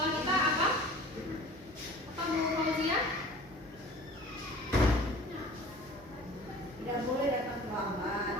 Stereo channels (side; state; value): both; normal; correlation 0.43